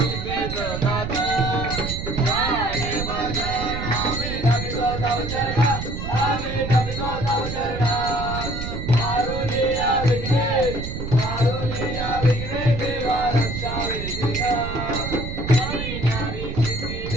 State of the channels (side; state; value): right; noise; rumble, 5 dB below the sound